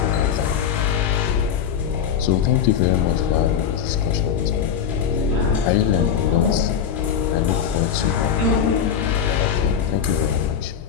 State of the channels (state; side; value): quieter; right; 8.0 dB